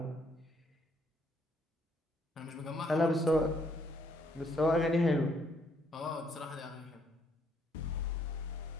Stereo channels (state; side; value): normal; both; correlation 0.69